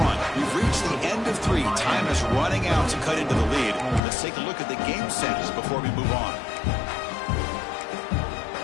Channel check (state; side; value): drops out; right; at 4.0 s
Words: We've reached the end of 3. Time is running out to cut into the lead. Let's take a look at the game sets before we move on.